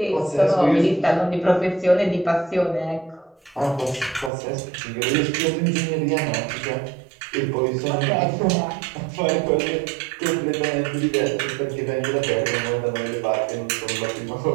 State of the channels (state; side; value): drops out; left; at 4.3 s